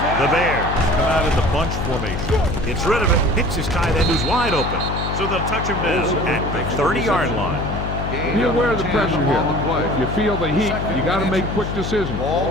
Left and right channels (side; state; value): left; noise; hum, 4 dB below the sound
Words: The Bears come out in the bunch formation. Gets rid of it. Hits his tight end who's wide open. So they'll touch him down at the 30-yard line. Be aware of the pressure here. If you feel the heat, you got to make quick decisions.